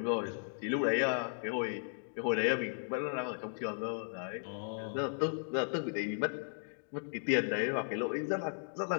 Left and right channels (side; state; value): right; silent; digital silence